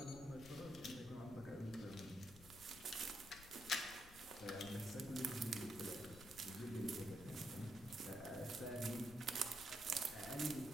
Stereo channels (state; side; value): noise; left; rumble, 16 dB below the sound